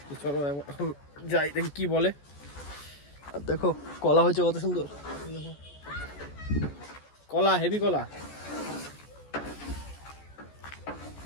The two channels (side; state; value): right; late; 14 ms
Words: তো চলো এখন যাই, দেখি কি বলে। আর দেখো কলা হয়েছে কত সুন্দর, দেখো কলা, হেভি কলা।